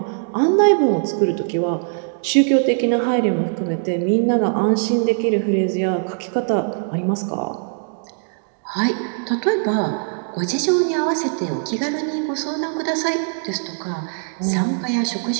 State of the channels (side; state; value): left; silent; digital silence